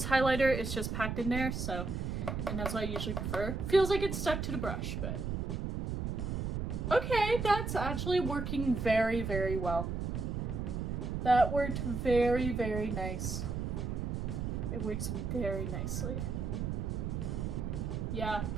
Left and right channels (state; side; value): noise; right; rumble, 2 dB below the sound